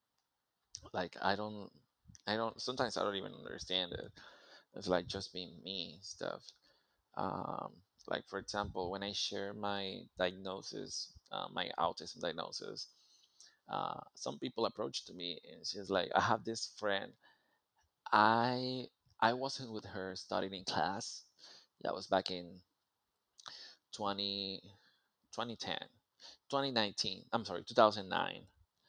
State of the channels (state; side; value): identical; both; correlation 1.00